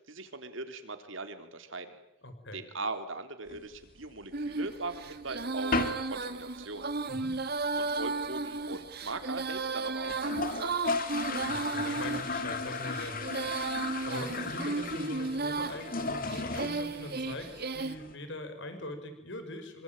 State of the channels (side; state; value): both; normal; correlation -0.01